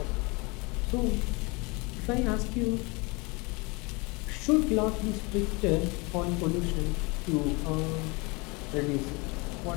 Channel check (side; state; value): right; quieter; 27.6 dB